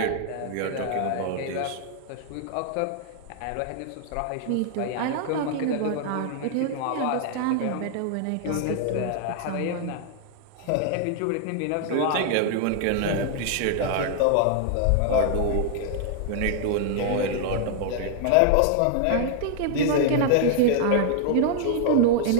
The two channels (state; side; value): different; both; correlation 0.00